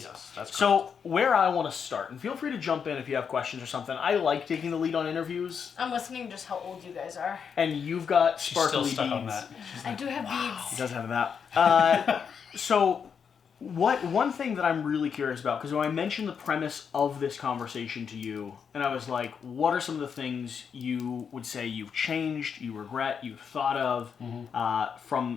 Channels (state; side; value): quieter; right; 6.8 dB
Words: Yes, that's correct. So where I want to start, and feel free to jump in if you have questions or something. I like taking the lead on interviews, I'm listening just how old you guys are. and you've got She's still sparkly stuck beads. on that. I do have He beads. does have that. So, one thing that I'm really curious about, because when I mentioned the premise of this conversation to you, and I was like, what are some of the things you would say you've changed, you regret, you've thought of